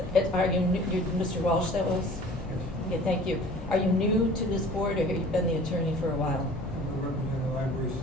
Are you, Mr. Walsh that was? Okay, thank you. Are you new to this board, or have you been the attorney for a while? I've been working in the library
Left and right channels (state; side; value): normal; both; correlation 0.47